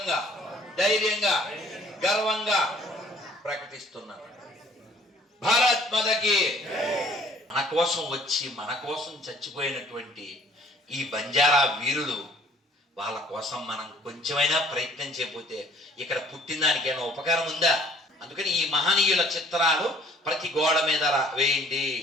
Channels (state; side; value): normal; both; correlation 0.57